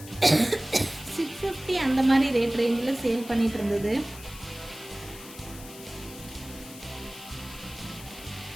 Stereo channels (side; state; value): left; noise; hiss, 16 dB below the sound